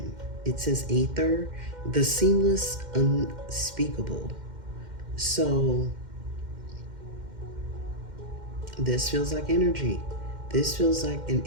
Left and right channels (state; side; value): late; left; 2.1 ms